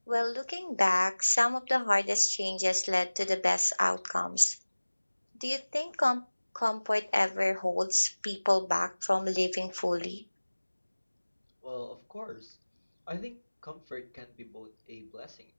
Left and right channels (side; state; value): both; inverted; correlation -1.00